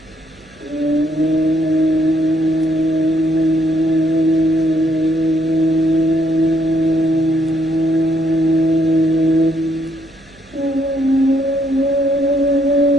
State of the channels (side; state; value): right; noise; hum, 29 dB below the sound